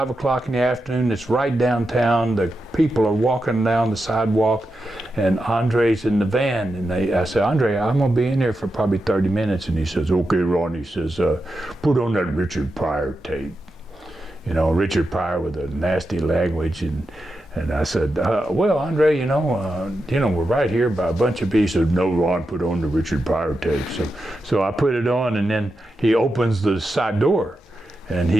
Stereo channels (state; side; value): normal; both; correlation 0.88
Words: o'clock in the afternoon. It's right downtown. The people are walking down the sidewalk, and Andre's in the van. And I say, Andre, I'm going to be in here for probably 30 minutes. And he says, okay, Ron. He says, put on that Richard Pryor tape. Richard Pryor with a nasty language. And I said, well, Andre, we're right here by a bunch of people. He said, no, Ron, put on the Richard Pryor tape. So I put it on, and then he opens the side door, and